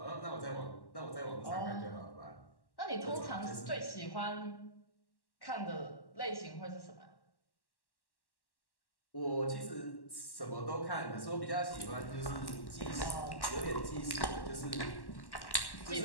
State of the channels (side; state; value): right; late; 1.1 ms